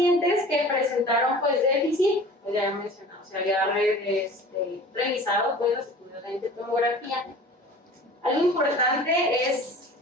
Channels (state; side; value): normal; both; correlation 0.42